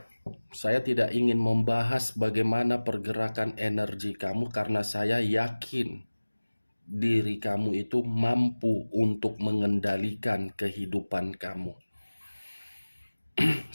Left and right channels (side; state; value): both; inverted; correlation -1.00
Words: saya tidak ingin membahas bagaimana pergerakan energi kamu karena saya yakin diri kamu itu mampu untuk mengendalikan kehidupan kamu.